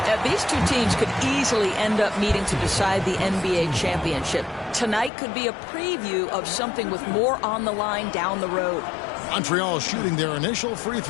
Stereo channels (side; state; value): right; drops out; at 5.1 s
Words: These 2 teams could easily end up meeting to decide the NBA championship. Tonight could be a preview of something with more on the line down the road. Montreal shooting their initial free